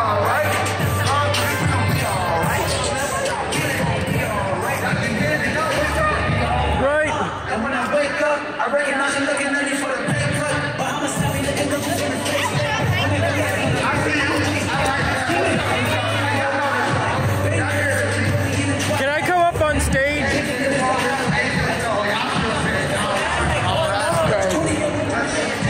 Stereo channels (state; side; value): identical; both; correlation 1.00